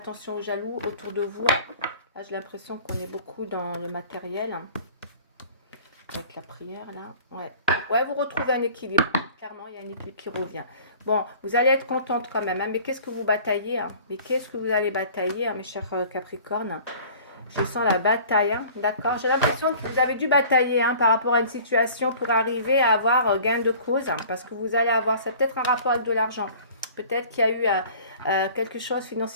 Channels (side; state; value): both; inverted; correlation -0.47